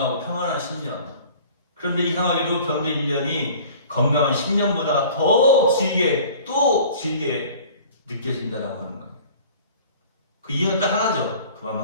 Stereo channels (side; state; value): both; inverted; correlation -0.46